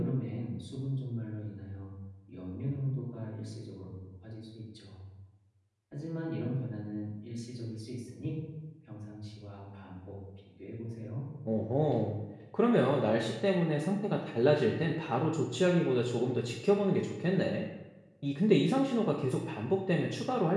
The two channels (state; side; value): identical; both; correlation 1.00